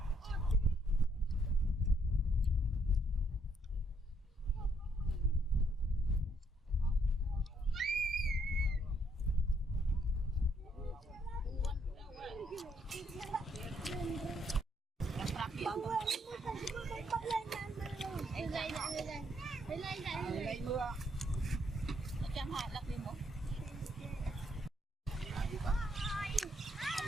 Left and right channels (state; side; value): normal; both; correlation 0.72